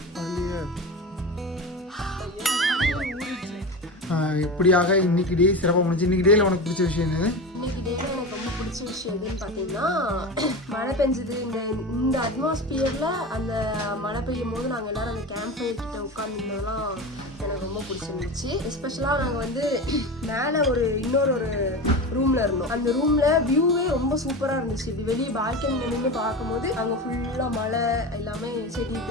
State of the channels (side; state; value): both; normal; correlation 0.26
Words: இப்படியாக இன்னைக்கு டே சிறப்பாக முடிஞ்சு. இன்னைக்கு டேல உனக்கு பிடிச்ச விஷயம் என்னது? இன்னைக்கு டேல எனக்கு ரொம்ப பிடிச்ச விஷயம் எதுன்னு பார்த்தீங்கன்னா, மழை பெஞ்சது. இந்த அட்மாஸ்பியர்ல அந்த மழை பெய்யும் போது நாங்கள் எல்லாரும் அந்த கேம்ப் ஃபயர் கிட்ட உட்காந்துருந்ததெல்லாம் எனக்கு ரொம்ப பிடிச்சிருந்துச்சு. எஸ்பெஷலாக நாங்கள் வந்து மேலே இன்னொரு ரூம்ல இருந்தோம். அந்த ரூம்ல வியூவே ரொம்ப சூப்பராக இருந்துச்சு. இப்படி வெளியே பால்கனியில் நின்று பார்க்கும்போது அங்கே ஃபுல்லாக மழை எல்லாமே செடி